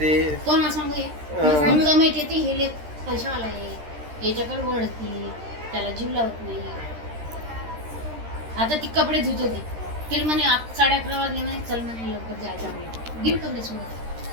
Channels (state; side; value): late; left; 13 ms